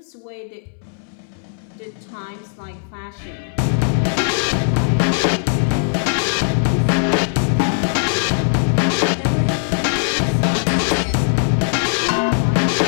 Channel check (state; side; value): silent; right; 66 dB below the other